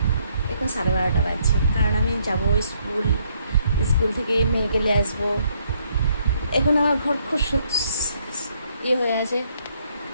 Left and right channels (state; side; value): inverted; both; correlation -0.70